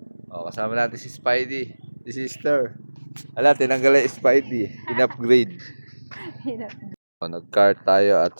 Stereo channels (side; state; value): both; inverted; correlation -1.00